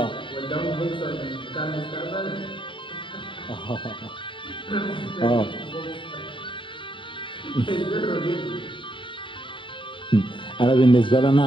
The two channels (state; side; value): late; right; 0.24 ms